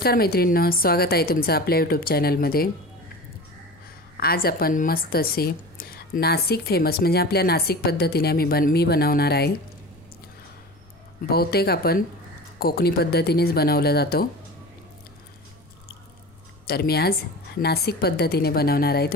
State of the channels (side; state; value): left; noise; rumble, 28 dB below the sound